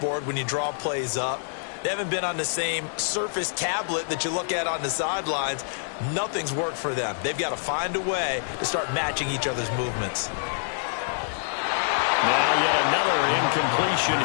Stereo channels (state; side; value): silent; right; digital silence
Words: when you draw plays up. They haven't been on the same surface tablet that you look at on the sidelines. Nothing's worked for them. They've got to find a way to start matching each other's movements. Now yet another incompletion